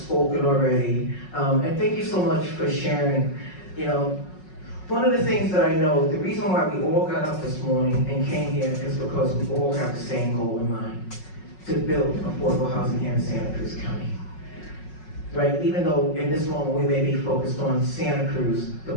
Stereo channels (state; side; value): late; right; 5.4 ms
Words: already, and thank you so much for sharing. One of the things that I know, the reason why we all got up this morning and came here is because we all have the same goal in mind: to build affordable housing here in Santa Cruz County. Right? Even though in this moment we may be focused on Santa Cruz, the